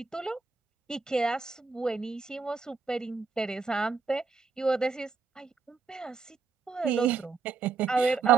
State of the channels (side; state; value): left; quieter; 4.9 dB